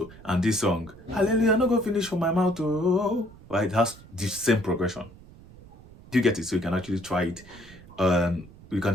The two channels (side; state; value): right; noise; rumble, 21 dB below the sound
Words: and this song, Hallelujah, no go finish on my mouth too. Right, it has the same progression. Do you get it? So you can actually try it. You can